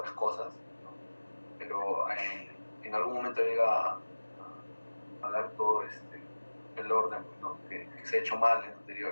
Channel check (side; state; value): both; inverted; correlation -1.00